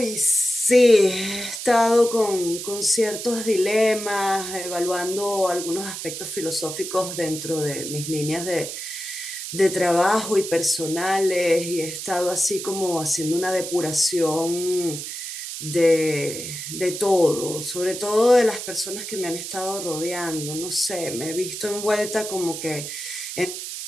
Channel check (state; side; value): noise; right; hiss, 7 dB below the sound